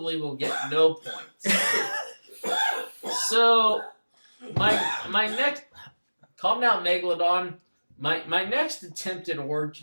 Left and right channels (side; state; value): both; inverted; correlation -1.00